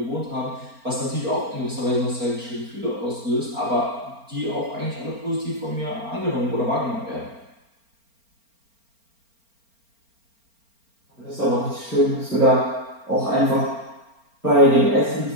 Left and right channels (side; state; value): left; late; 4.4 ms